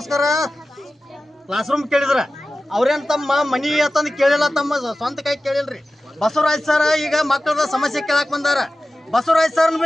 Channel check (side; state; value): both; normal; correlation 0.95